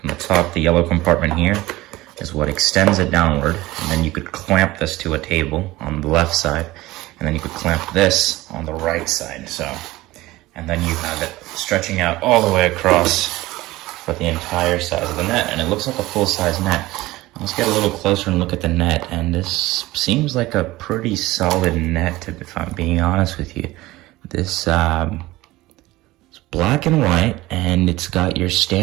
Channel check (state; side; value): quieter; left; 18.5 dB